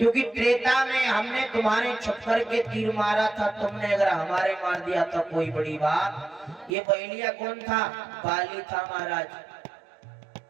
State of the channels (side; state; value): left; drops out; at 6.8 s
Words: त्रेता में हमने तुम्हारे छप्पर के तीर मारा था, तुमने अगर हमारे मार दिया तो कोई बड़ी बात। ये बैलिया कौन था? बाली था महाराज।